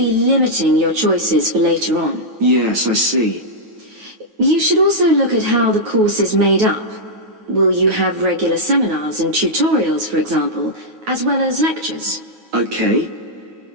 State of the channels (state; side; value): late; left; 9.3 ms